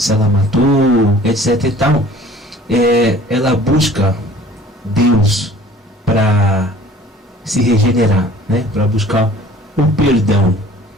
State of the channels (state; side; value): normal; both; correlation 0.50